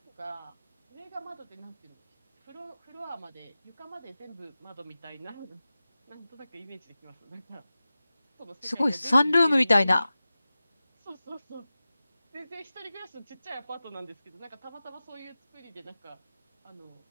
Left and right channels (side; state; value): both; inverted; correlation -0.95